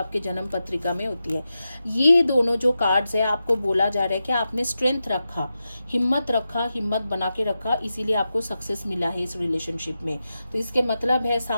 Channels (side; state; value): both; inverted; correlation -0.91